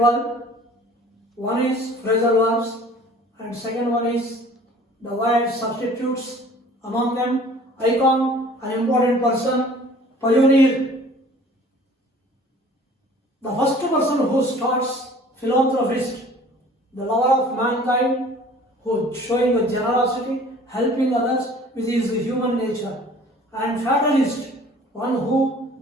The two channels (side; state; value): both; normal; correlation 0.49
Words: One is phrasal verbs, and second one is the word substitutes. Among them, icon, an important person, pioneer. The first person who starts, philanthropist, the lover of mankind, who showing the generosity, helping others with his human nature, and fatalist, one